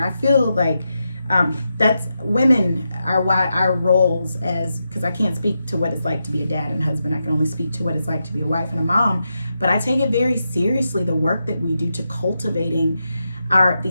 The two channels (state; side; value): inverted; both; correlation -0.87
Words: feel like that's women are why our roles as, because I can't speak to what it's like to be a dad and husband. I can only speak to what it's like to be a wife and a mom. But I take it very seriously, the work that we do to cultivating